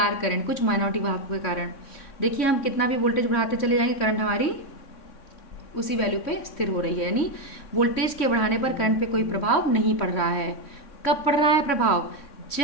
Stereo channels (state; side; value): late; right; 3.6 ms